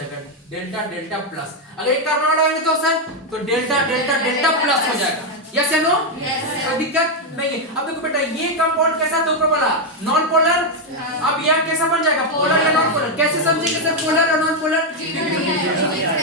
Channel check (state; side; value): normal; both; correlation 0.03